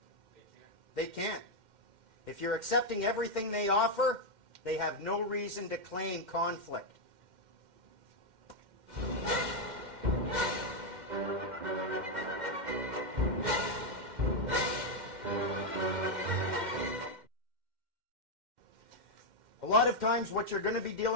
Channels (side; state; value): left; late; 2.1 ms